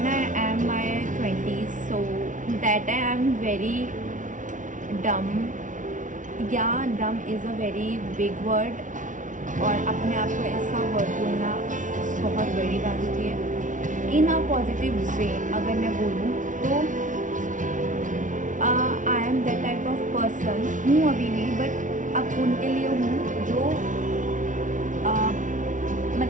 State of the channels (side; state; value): left; late; 0.37 ms